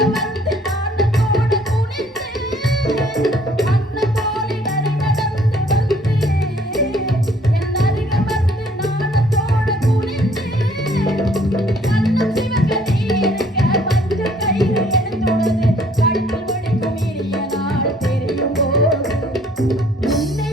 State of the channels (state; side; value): normal; both; correlation 0.60